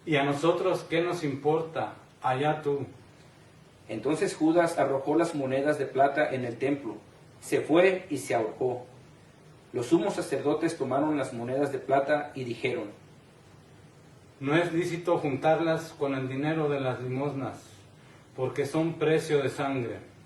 ¿Y a nosotros qué nos importa? Allá tú. entonces Judas arrojó las monedas de plata en el templo, se fue y se ahorcó. Los sumos sacerdotes tomaron las monedas de plata y dijeron, No es lícito juntarlas con el dinero de las limosnas, porque son precio de sangre.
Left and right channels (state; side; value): identical; both; correlation 1.00